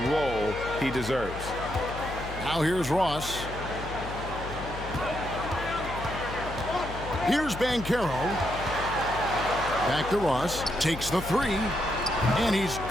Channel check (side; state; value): left; noise; hum, 9 dB below the sound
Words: role he deserves. Now here's Ross. Here's Banchero. Back to Ross. Takes the three. And he's